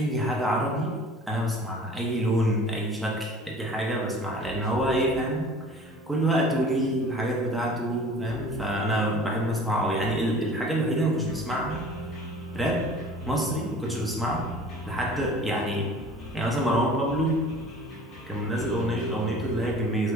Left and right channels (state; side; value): normal; both; correlation 0.45